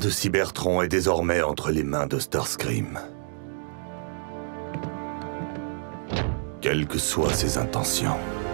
Cybertron est désormais entre les mains de Starscream. Quelles que soient ses intentions.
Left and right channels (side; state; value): left; silent; digital silence